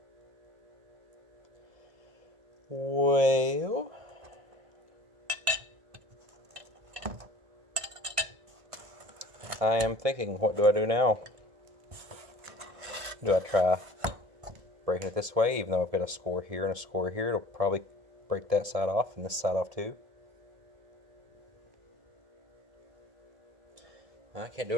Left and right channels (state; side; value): late; left; 1.7 ms